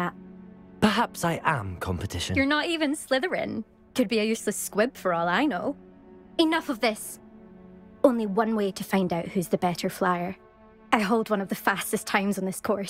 Perhaps I am competition. You're not even Slytherin. Could be a useless squib for all I know. Enough of this. Only one way to find out who's the better flyer. I hold one of the fastest times on this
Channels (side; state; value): both; identical; correlation 1.00